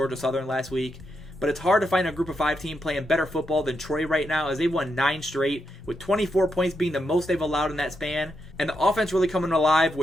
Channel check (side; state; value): both; normal; correlation 0.83